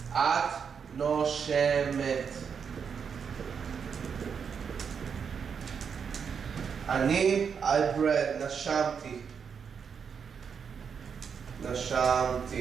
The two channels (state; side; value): quieter; left; 6.6 dB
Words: את נושמת. אני, I breathe, נשמתי.